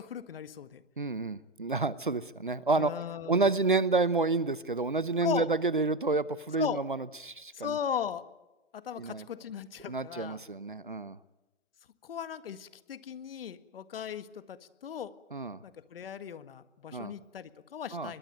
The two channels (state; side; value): normal; both; correlation 0.16